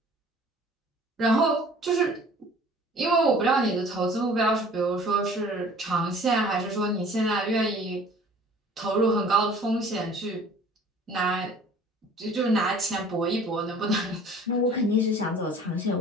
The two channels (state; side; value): normal; both; correlation 0.50